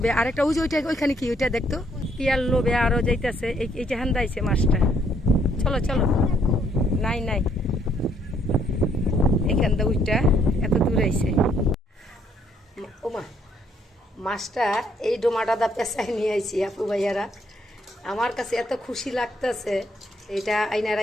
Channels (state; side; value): normal; both; correlation 0.68